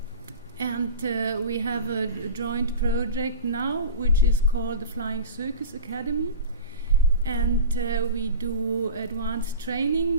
we have a joint project now which is called the Flying Circus Academy, and we do advanced training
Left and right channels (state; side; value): inverted; both; correlation -0.32